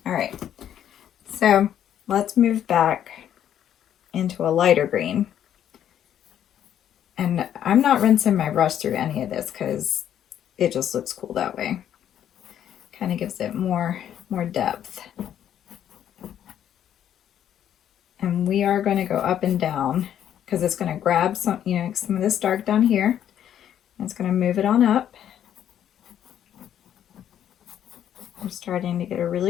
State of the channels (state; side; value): quieter; right; 10.2 dB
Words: All right, so let's move back into a lighter green. And I'm not rinsing my brush through any of this because it just looks cool that way. Kind of gives it more depth. And we are going to go up and down because it's going to grab some of this dark down here. And it's going to move it on up. We're starting to get a